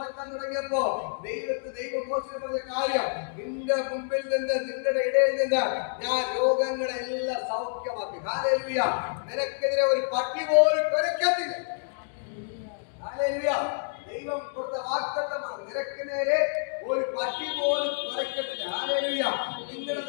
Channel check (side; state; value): right; silent; digital silence